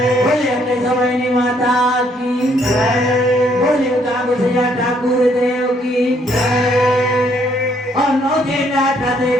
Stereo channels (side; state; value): both; normal; correlation 0.68